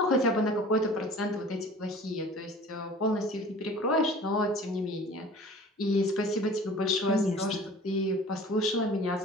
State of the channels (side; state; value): both; normal; correlation 0.44